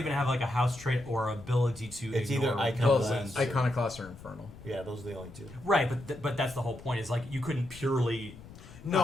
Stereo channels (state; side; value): noise; left; rumble, 18 dB below the sound